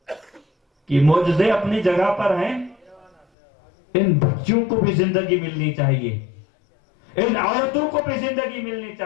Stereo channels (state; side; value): drops out; right; at 3.2 s